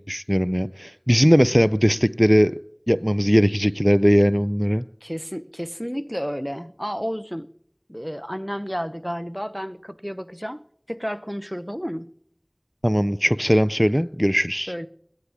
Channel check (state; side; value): identical; both; correlation 1.00